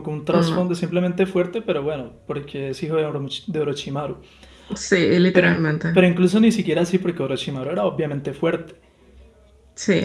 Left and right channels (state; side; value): identical; both; correlation 1.00